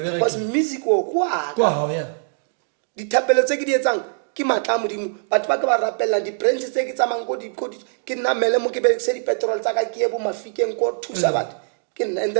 because music o kwaka dithapelo tse ke di etsang ke matla a modimo batho ba ke ba rapella di-brands tse ke tsamang ke namele mo ke berekise dipetrol tsa ka ke ye bo mafikeng ko thusa batho ke nna and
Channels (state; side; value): silent; left; digital silence